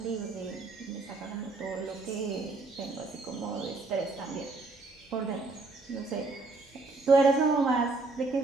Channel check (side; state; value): left; quieter; 3.5 dB